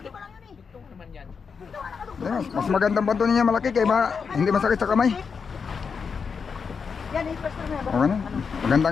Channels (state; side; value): quieter; right; 5.8 dB